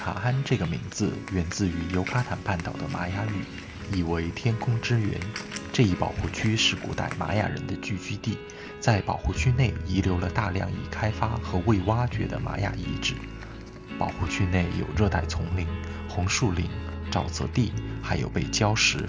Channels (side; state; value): both; identical; correlation 1.00